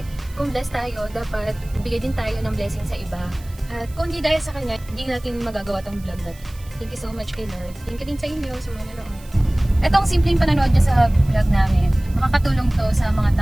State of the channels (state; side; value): noise; right; hiss, 24 dB below the sound